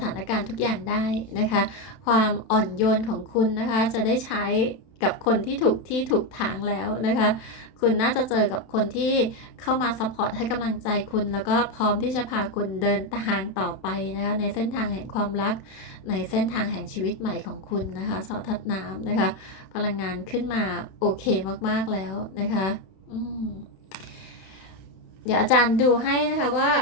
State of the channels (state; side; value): late; right; 31 ms